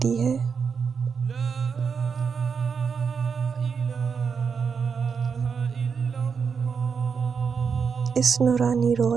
ہے۔ اس نورانی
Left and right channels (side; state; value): left; quieter; 6.0 dB